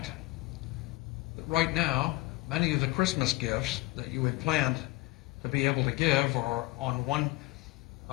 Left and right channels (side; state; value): right; quieter; 20.2 dB